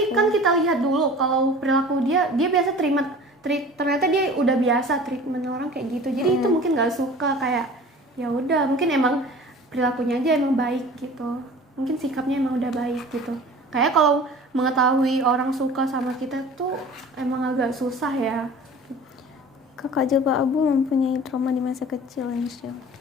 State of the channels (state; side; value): normal; both; correlation 0.43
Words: kan kita lihat dulu kalau perilaku dia biasa ternyata dia udah biasa treatment orang kayak gitu. Jadi itu mungkin nggak suka, kayak ya udah mungkin emang perilakunya aja emang baik gitu. Mungkin sikapnya emang udah baik gitu. Kayak kalau mengetahui orang suka sama kita tuh emang agak susah ya. Kakak Jilbab Abu mempunyai trauma di masa kecil, Insya.